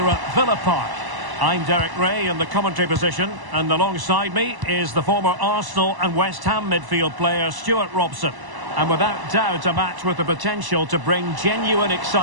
at Villa Park. I'm Derek Ray in the commentary position, and alongside me is the former Arsenal and West Ham midfield player Stuart Robson. And without doubt a match with the potential to bring genuine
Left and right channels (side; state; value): left; late; 1.0 ms